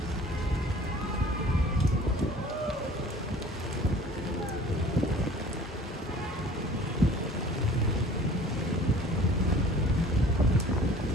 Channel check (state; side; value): normal; both; correlation 0.48